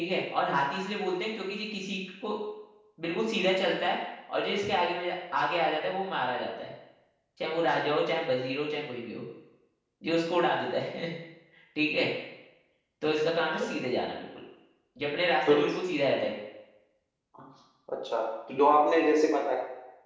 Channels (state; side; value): identical; both; correlation 1.00